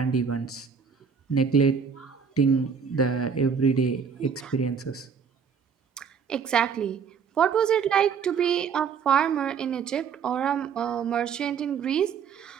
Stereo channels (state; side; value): quieter; left; 6.5 dB